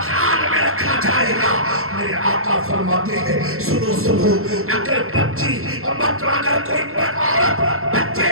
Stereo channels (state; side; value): late; left; 0.62 ms